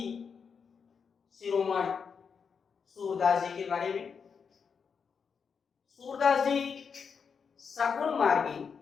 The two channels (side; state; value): right; quieter; 6.1 dB